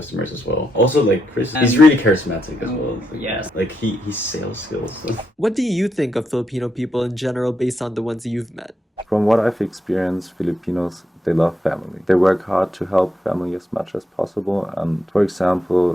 as well. Also like Chris, he's really charismatic as well. Yes. Like he's sales skills. What do you think of Filipino people in general based on the ones you've met? From what I've experienced, Filipinos, they love family. They work hard to help family as much as possible. And for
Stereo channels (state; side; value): normal; both; correlation 0.81